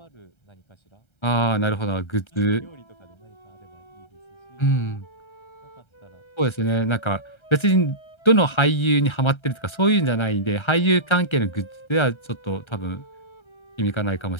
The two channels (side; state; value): right; late; 1.3 ms